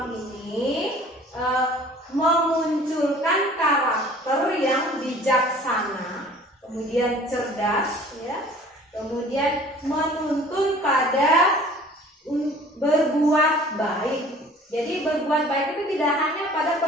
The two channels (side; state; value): both; normal; correlation 0.49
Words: ini memunculkan karakter yang bijaksana, kemudian cerdas, ya, kemudian menuntun pada berbuat baik. Jadi berbuat baik itu tidak hanya pada